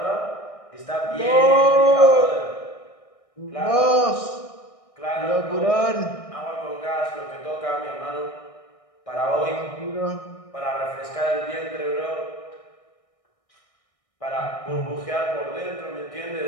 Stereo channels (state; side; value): late; right; 1.6 ms